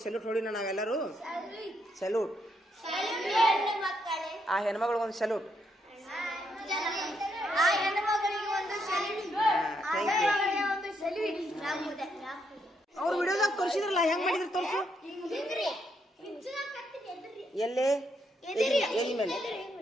ಸೆಲ್ಯೂಟ್ ಹೊಡಿನ ನಾವೆಲ್ಲರೂ ಸೆಲ್ಯೂಟ್ ಆ ಹೆಣ್ಮಗಳಿಗೊಂದು ಸೆಲ್ಯೂಟ್ ಅವ್ರು ವಿಡಿಯೋದಾಗ ತೋರಿಸಿದ್ರಲ್ಲ ಹೆಂಗ್ ಮಾಡಿದ್ರು ತೋರಿಸು ಎಲ್ಲೇ ಎಲ್ಲಿ ಮೇಲೆ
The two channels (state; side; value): normal; both; correlation 0.77